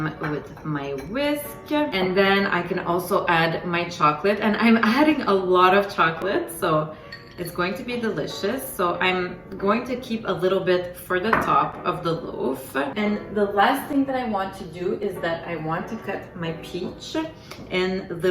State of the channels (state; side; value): identical; both; correlation 1.00